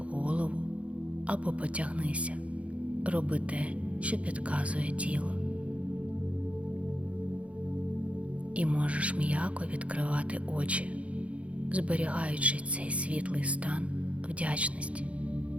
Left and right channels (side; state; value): left; late; 0.063 ms